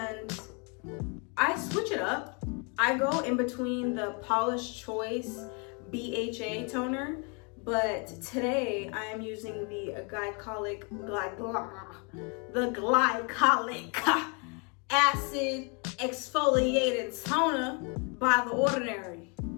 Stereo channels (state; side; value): quieter; right; 34.6 dB